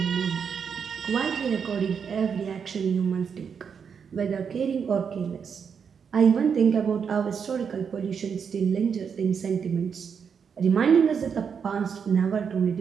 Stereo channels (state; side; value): quieter; left; 6.7 dB